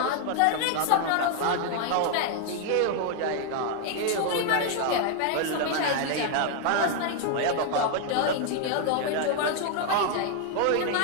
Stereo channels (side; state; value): both; different; correlation 0.00